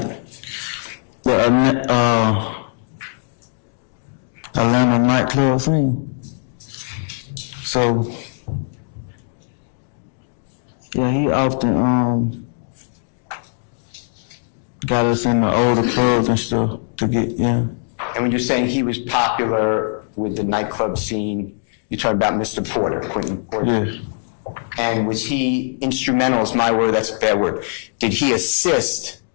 the Atlanta nightclub scene. So yeah, he often got us in the older clubs and stuff to get, yeah. And when you're saying he was popular with the nightclub scene, you're talking about Mr. Porter, Quentin Porter? Yeah. And was he instrumental, is my word, that's a bad word. Did he assist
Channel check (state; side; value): silent; right; digital silence